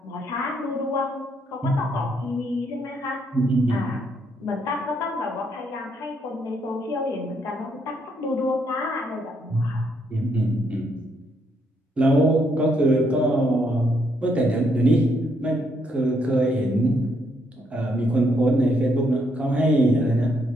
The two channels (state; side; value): normal; both; correlation 0.74